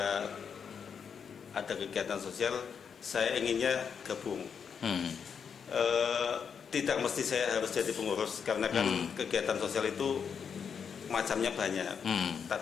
ada kegiatan sosial saya inginnya gabung. Tidak mesti saya harus jadi pengurus, karena kan kegiatan sosial itu macamnya banyak.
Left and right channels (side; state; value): right; quieter; 6.8 dB